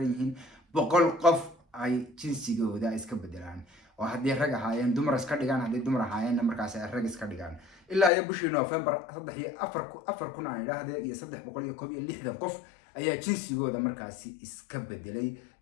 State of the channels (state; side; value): drops out; right; at 8.1 s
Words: yihiin 100 qof ay jinsigooda iska bedelaan oo haddii rag ahaayeen dumar iska dhigaan haddii dumar ahaayeen markaas ay rag iska dhigaan ilaa ay bishii November 4 kun aan idhaahdee iyo 360 qof ayaa jinsigooda markaasi iska bedelay